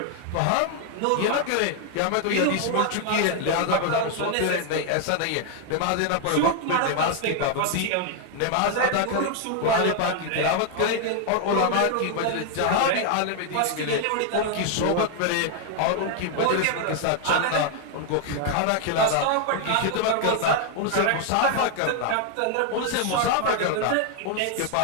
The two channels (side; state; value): both; different; correlation 0.00